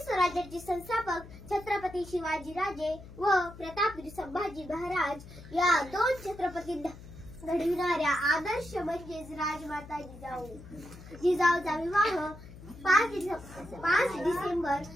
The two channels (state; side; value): noise; left; hum, 16 dB below the sound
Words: स्वराज्याचे संस्थापक छत्रपती शिवाजीराजे व प्रतापवीर संभाजी महाराज या दोन छत्रपती घडविणाऱ्या आदर्श म्हणजेच राजमाता जिजाऊ. जिजाऊचा विवाह 5 डिसेंबर